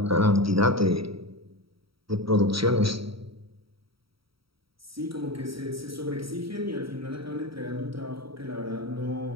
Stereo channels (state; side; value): late; left; 0.75 ms